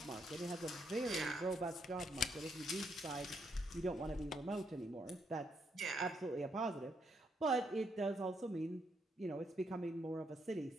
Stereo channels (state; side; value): normal; both; correlation 0.76